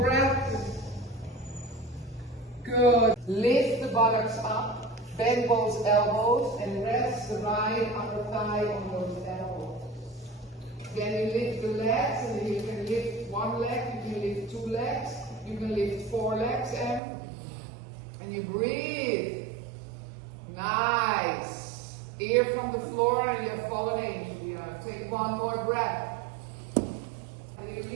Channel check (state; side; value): drops out; left; at 17.0 s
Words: breath. Good. Lift the buttocks up. Bend both elbows and rest the right upper thigh on those elbows. Then you lift the legs, and you can lift one leg, you can lift two legs, you can lift four legs, and you breathe. Nice. Ear from the floor, and you have fallen angel behind. Take one more breath. And you